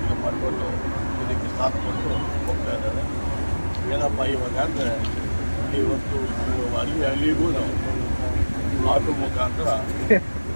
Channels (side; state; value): both; inverted; correlation -1.00